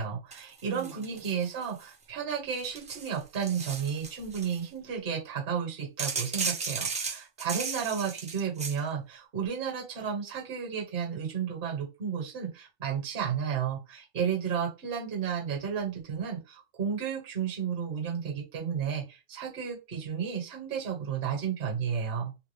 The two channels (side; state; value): left; quieter; 6.7 dB